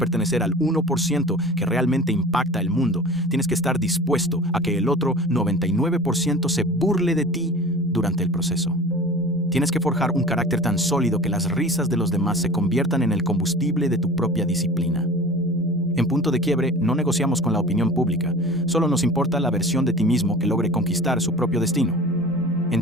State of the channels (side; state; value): both; normal; correlation 0.39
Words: al 1% que realmente impacta el mundo, tienes que estar dispuesto a que el otro 99% se burle de ti durante el proceso. Tienes que forjar un carácter tan sólido que las risas de los demás se conviertan en el combustible de tu propia disciplina. En punto de quiebre, no negociamos con la opinión pública, solo nos importa la versión de ti mismo que logre conquistar su propio destino.